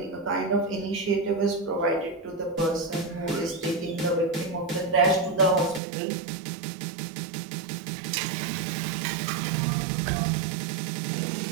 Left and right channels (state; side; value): drops out; left; at 5.8 s